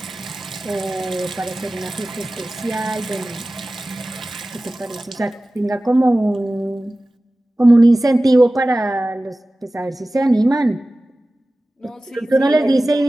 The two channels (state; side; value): normal; both; correlation 0.97